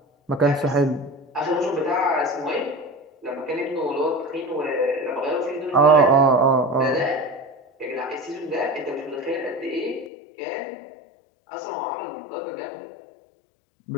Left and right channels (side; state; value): right; drops out; at 10.1 s